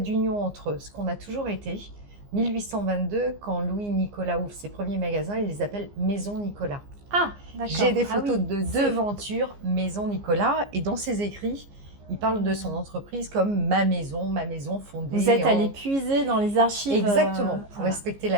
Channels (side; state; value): left; late; 15 ms